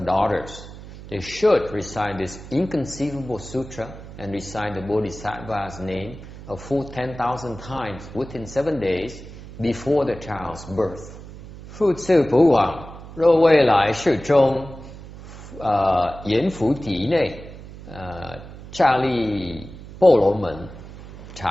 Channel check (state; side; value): noise; right; hum, 15 dB below the sound